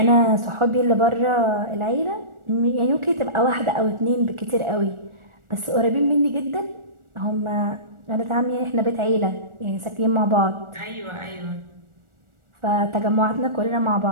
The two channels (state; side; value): late; left; 1.4 ms